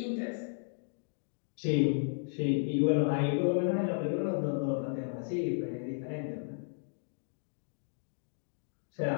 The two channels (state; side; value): silent; right; digital silence